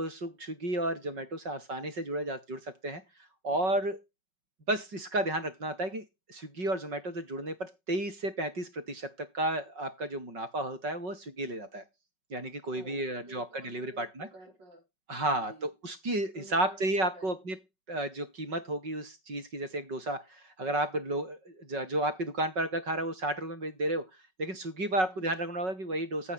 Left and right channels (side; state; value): left; late; 5.4 ms